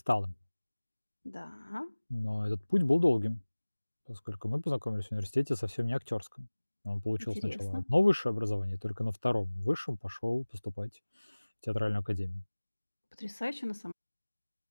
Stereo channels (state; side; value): inverted; both; correlation -1.00